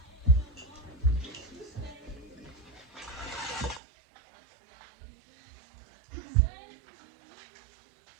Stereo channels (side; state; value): left; drops out; at 3.8 s